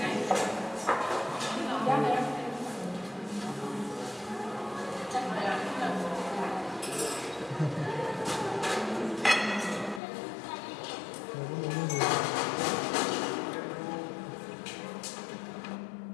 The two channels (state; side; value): drops out; right; at 10.0 s